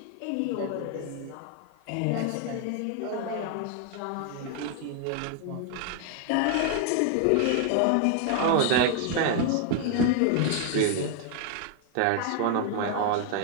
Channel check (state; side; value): different; both; correlation 0.00